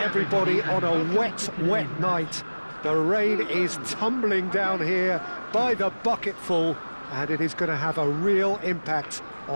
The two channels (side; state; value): both; inverted; correlation -1.00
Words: on a wet, wet night. The rain is tumbling down here by the bucketful, and it is going to have a real impact